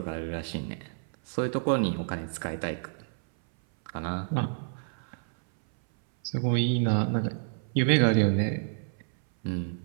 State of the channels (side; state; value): left; silent; 57 dB below the other